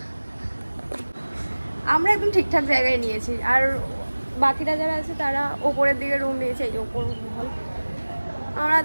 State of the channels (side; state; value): both; inverted; correlation -1.00